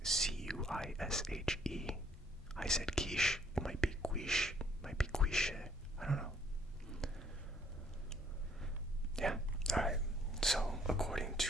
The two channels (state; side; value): normal; both; correlation 0.63